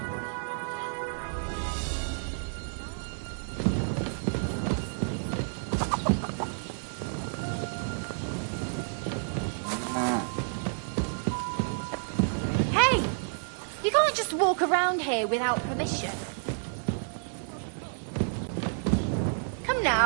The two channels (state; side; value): silent; left; 58 dB below the other